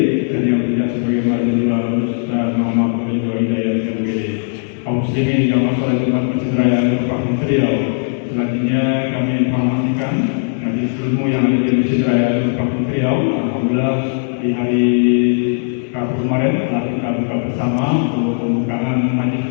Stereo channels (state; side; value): silent; right; digital silence